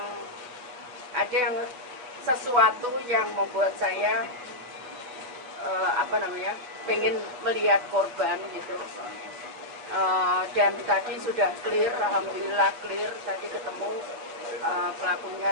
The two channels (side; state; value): left; late; 7.9 ms